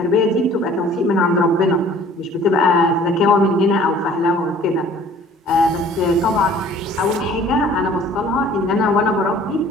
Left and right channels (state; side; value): normal; both; correlation 0.52